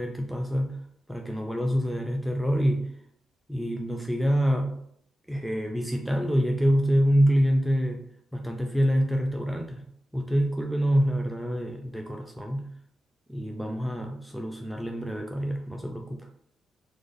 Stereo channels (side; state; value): both; normal; correlation 0.96